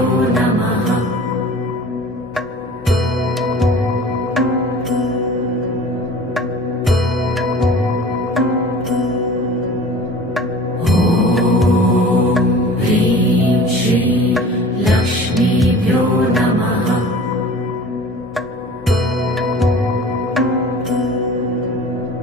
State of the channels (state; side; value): normal; both; correlation 0.42